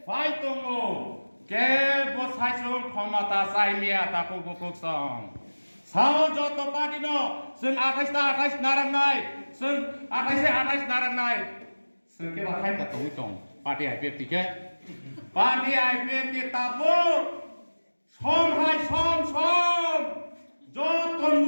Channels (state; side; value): inverted; both; correlation -1.00